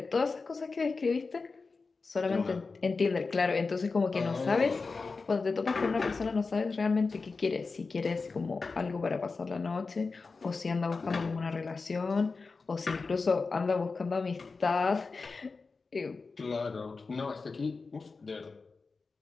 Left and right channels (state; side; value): quieter; right; 4.2 dB